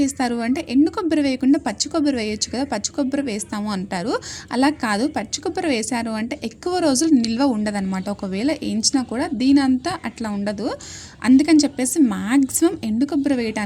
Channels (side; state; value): both; identical; correlation 1.00